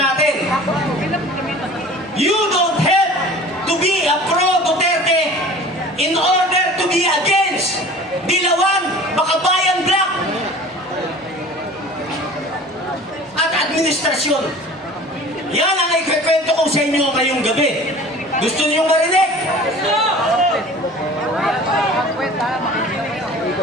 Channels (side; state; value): both; normal; correlation 0.43